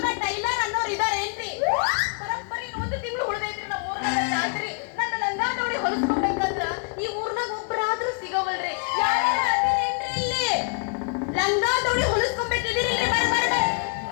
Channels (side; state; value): right; quieter; 39.2 dB